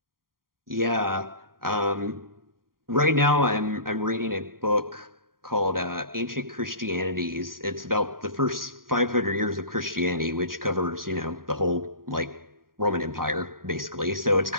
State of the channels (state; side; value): late; left; 0.92 ms